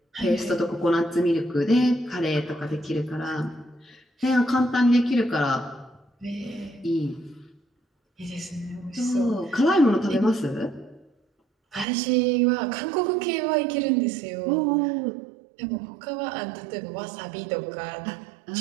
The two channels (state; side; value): drops out; left; at 11.9 s